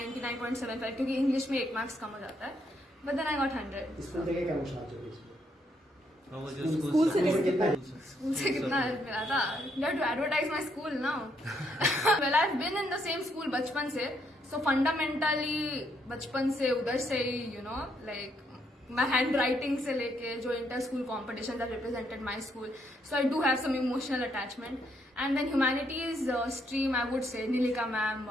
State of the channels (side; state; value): both; normal; correlation 0.74